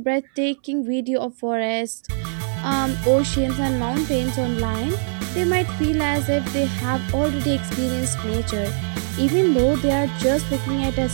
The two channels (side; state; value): left; silent; digital silence